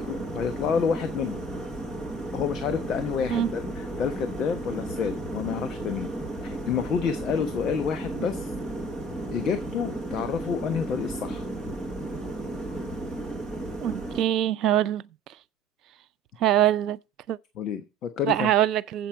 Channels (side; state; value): both; normal; correlation 0.47